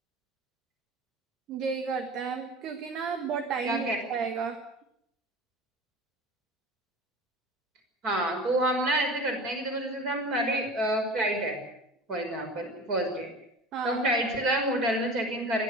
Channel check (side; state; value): both; normal; correlation 0.36